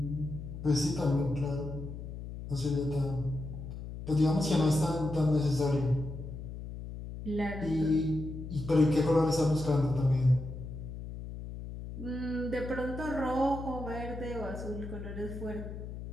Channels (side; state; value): left; noise; hum, 9 dB below the sound